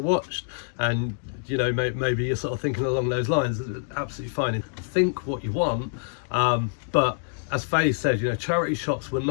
and you know, maybe you're sort of thinking along those lines, absolutely fine. Think what you want, but as Faye said, you know, charity shops were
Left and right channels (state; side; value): silent; right; digital silence